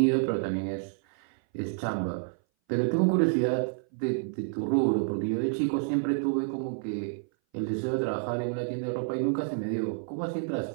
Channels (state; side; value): silent; left; 58 dB below the other